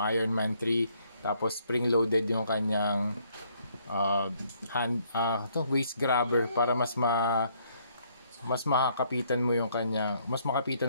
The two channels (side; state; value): both; inverted; correlation -0.68